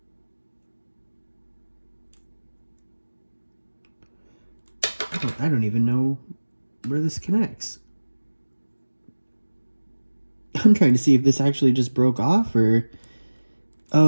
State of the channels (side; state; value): both; inverted; correlation -1.00